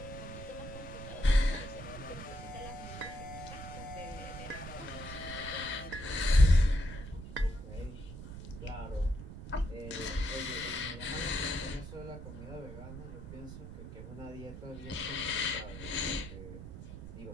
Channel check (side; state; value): right; noise; rumble, 11 dB below the sound